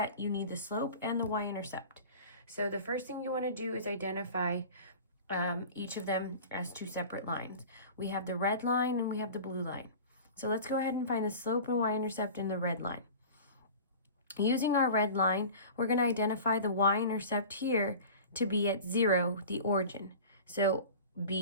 you need the slope and the y-intercept. So the first thing you want to do is identify each of them as two separate lines. We have the red line and we have the blue line. So let's go ahead and find the slope and y-intercept in the red line. Using our red line, we're going to identify the y-intercept here to be at 0, the origin. So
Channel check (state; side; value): inverted; both; correlation -0.37